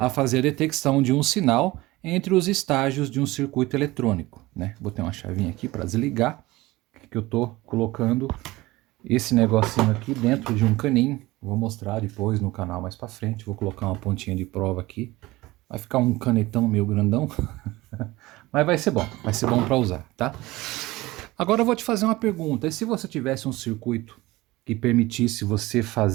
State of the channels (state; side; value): quieter; left; 19.6 dB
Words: fazer a detecção de um sinal entre os estágios de um circuito eletrônico, né. Botei uma chavinha aqui para desligar, que eu tô colocando esse negocinho aqui dentro de um caninho. Vou mostrar depois no canal mais para frente, vou colocar uma pontinha de prova aqui. Vai ficar um canetão meio grandão, mas vai ser bom para usar, tá? Agora eu vou te fazer uma pergunta, e se você tivesse um circuito que permitisse você